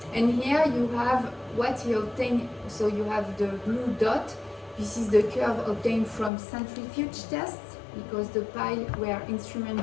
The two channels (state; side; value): drops out; right; at 6.3 s